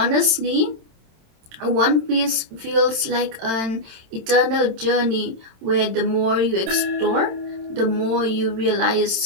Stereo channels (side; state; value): left; late; 27 ms